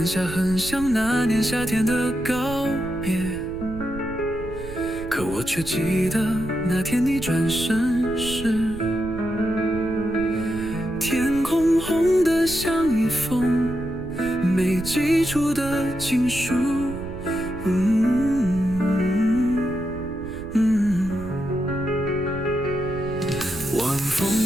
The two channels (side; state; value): right; noise; rumble, 12 dB below the sound